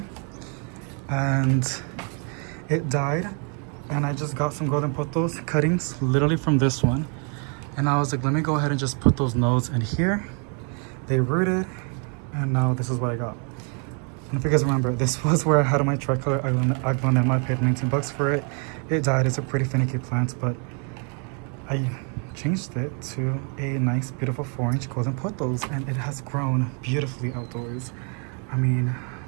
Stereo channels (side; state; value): left; quieter; 39.4 dB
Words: and it died. And I just got some golden pothos cuttings, literally from this one. And I was like, let me go ahead and just put those nodes in here. They rooted, and now this is what I got. And if you guys remember, this was where I had my tricolor aglonema. I paid 19 bucks for it. It died. It's a pretty finicky plant, but I changed it to a nice, beautiful 4-inch golden pothos, and it has grown beautifully outdoors. I mean,